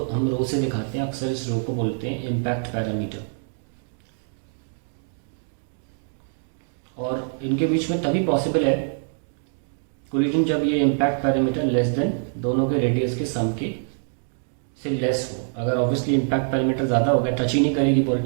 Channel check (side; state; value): left; silent; digital silence